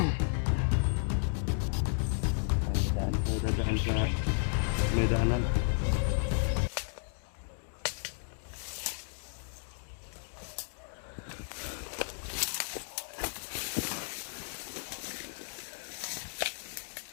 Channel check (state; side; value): silent; right; digital silence